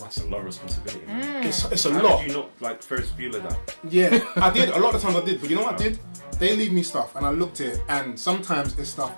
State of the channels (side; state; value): both; inverted; correlation -1.00